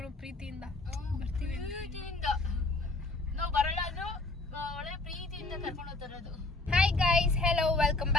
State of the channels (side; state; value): right; quieter; 3.2 dB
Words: ಪ್ರೀತಿಯಿಂದ ಬರ್ತೀವಿ. ನಾವು ಬರಲ್ಲ ಅಂದ್ರು ಒಳ್ಳೆ ಪ್ರೀತಿಯಿಂದ ಕರ್ಕೊಂಡು ಹೋಗ್ತಾರದು. Hi guys, hello, welcome